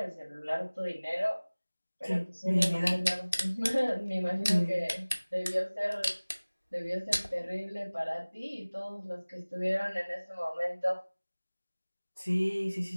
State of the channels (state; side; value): inverted; both; correlation -1.00